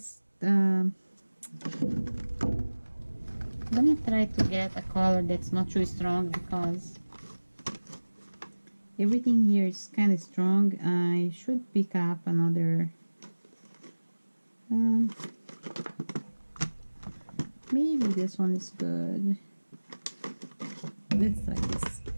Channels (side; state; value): both; inverted; correlation -1.00